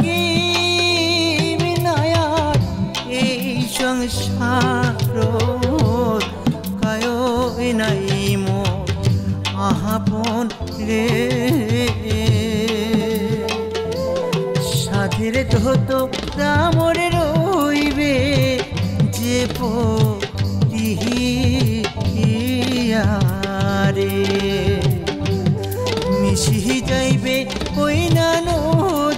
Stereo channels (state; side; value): identical; both; correlation 1.00